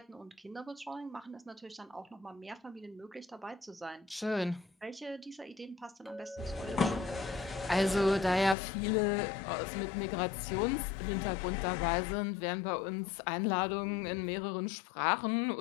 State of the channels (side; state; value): right; drops out; at 8.6 s